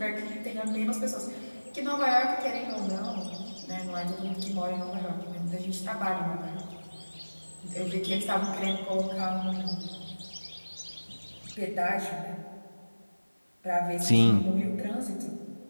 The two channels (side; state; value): both; inverted; correlation -1.00